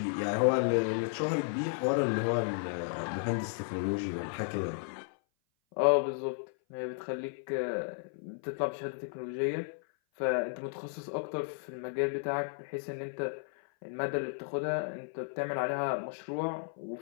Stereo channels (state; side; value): silent; right; 55 dB below the other